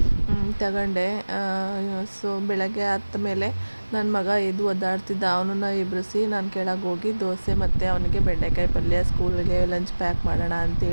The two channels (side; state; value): both; inverted; correlation -1.00